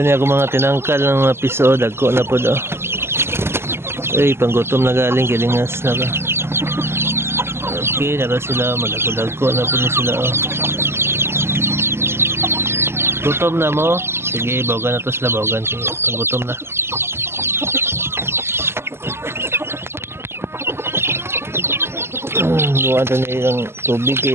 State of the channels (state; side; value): late; left; 0.12 ms